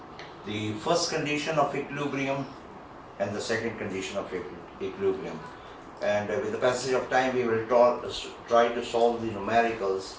the first condition of equilibrium and the second condition of equilibrium. And with the passage of time we will try to solve the numericals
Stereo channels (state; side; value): identical; both; correlation 1.00